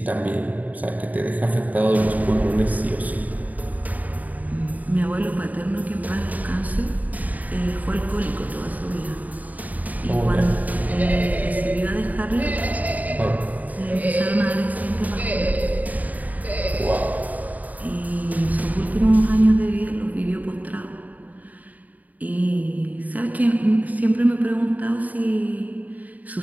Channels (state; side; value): late; left; 0.076 ms